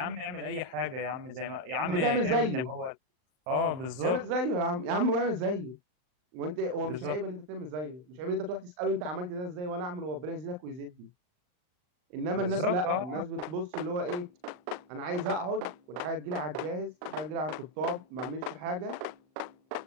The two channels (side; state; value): left; late; 39 ms